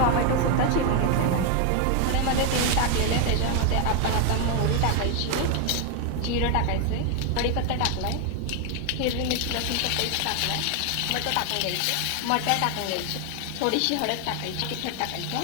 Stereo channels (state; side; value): different; both; correlation 0.01